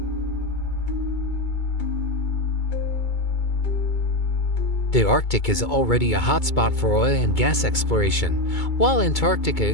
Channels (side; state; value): right; late; 2.2 ms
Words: The Arctic is already a hotspot for oil and gas exploration, while